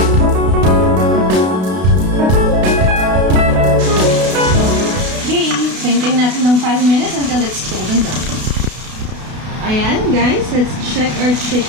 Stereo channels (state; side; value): late; left; 32 ms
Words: Hintayin natin ng 5 minutes until it's golden brown. Ayan, guys. Let's check our